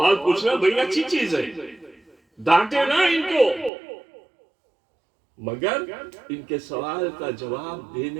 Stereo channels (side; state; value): left; drops out; at 3.7 s